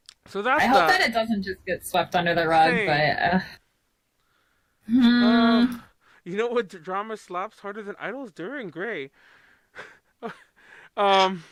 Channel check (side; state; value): both; identical; correlation 1.00